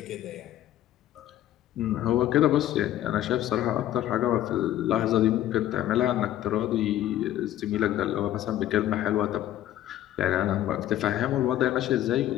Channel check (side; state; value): right; quieter; 12.8 dB